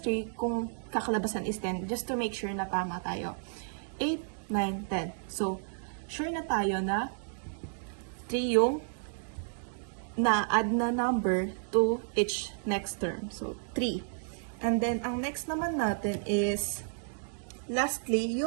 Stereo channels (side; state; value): left; silent; digital silence